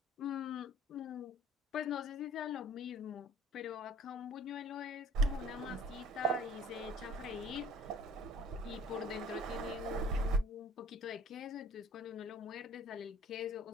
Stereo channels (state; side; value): normal; both; correlation 0.50